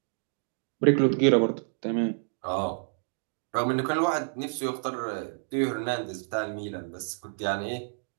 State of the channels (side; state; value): left; silent; digital silence